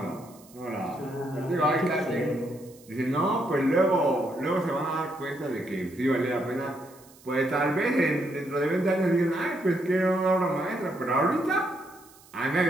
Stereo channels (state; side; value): noise; right; hiss, 25 dB below the sound